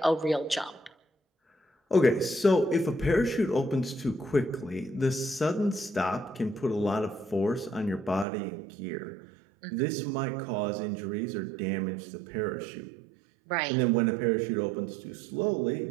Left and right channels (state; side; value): drops out; left; at 8.2 s